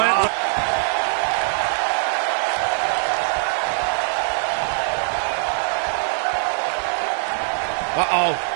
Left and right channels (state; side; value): silent; left; 64 dB below the other